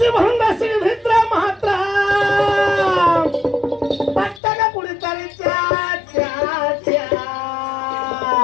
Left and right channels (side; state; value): right; drops out; at 4.4 s